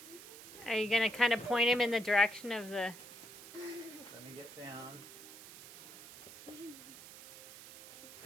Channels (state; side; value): noise; right; hiss, 15 dB below the sound